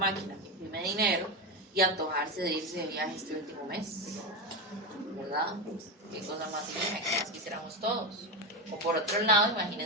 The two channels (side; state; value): both; normal; correlation 0.14